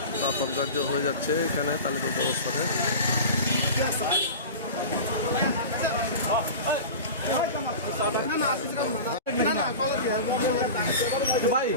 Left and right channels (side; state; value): both; inverted; correlation -0.32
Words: দাফন কার্য হয়ে যাচ্ছে এখানে তালিপুর অবস্থানে। ভাই